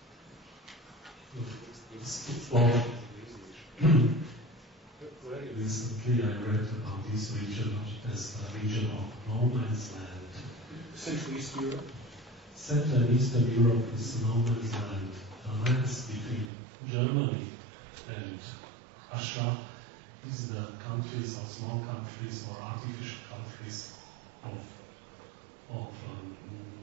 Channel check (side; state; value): left; drops out; at 16.5 s